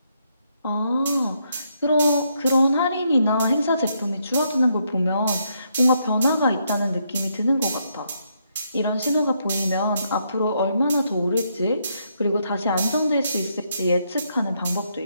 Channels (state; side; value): inverted; both; correlation -0.76